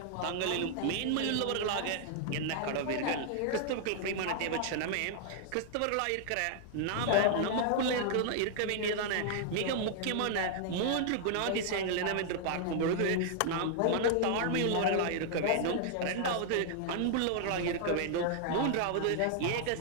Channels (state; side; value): different; both; correlation -0.01